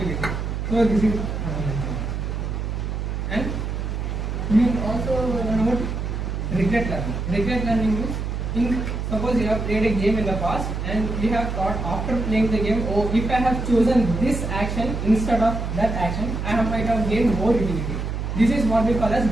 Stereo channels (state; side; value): noise; right; hum, 3 dB below the sound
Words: So this is and we also learn about regret learning. Regret learning means, suppose you have played a game in the past and you have thought after playing the game, oh, if I have chosen this action instead of that action, I might have gained more utility. This is what we call as